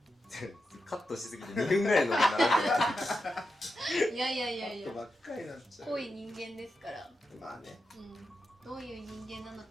カットしすぎて2分ぐらいのものになる。いやいやいやいやカットばっかりになっちゃう。濃い人間ですから、まあね。どういう人間なの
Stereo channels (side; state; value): both; normal; correlation 0.88